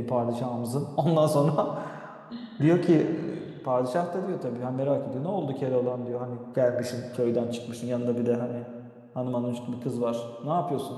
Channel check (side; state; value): both; identical; correlation 1.00